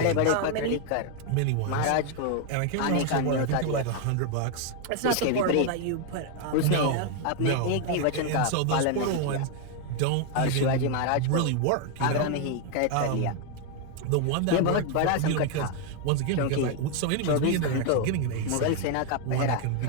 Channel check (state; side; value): different; both; correlation 0.01